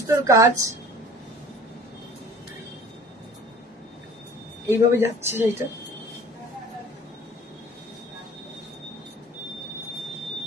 কাজ, এইভাবে যাচ্ছে এটা।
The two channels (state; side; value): normal; both; correlation 0.46